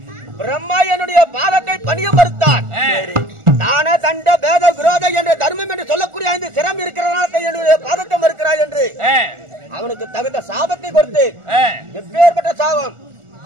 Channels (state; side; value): late; left; 1.4 ms